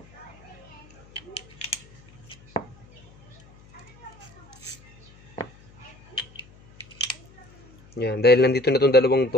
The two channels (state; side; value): noise; left; hum, 25 dB below the sound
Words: Yan, dahil nandito na itong dalawang